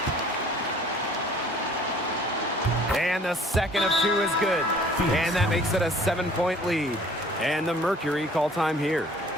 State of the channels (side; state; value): both; normal; correlation 0.53